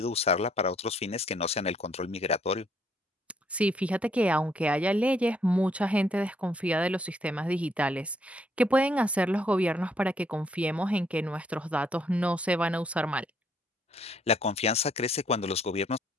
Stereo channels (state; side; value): normal; both; correlation 0.69